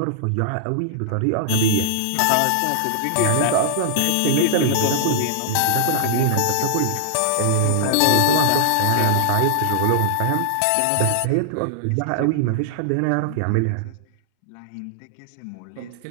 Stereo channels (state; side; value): different; both; correlation -0.01